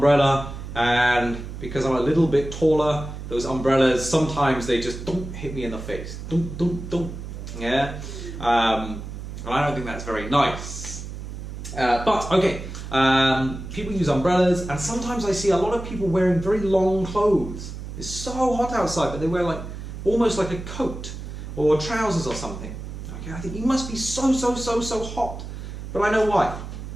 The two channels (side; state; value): right; noise; hum, 9 dB below the sound